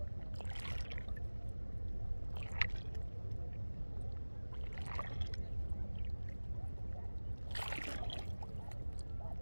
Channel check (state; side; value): inverted; both; correlation -1.00